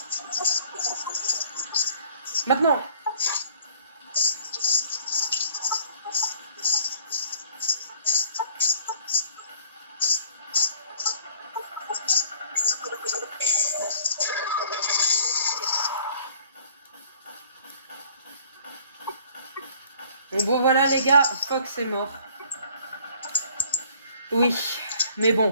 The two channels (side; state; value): both; inverted; correlation -0.55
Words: Maintenant. Bon voilà les gars, Fox est mort. Oui, mais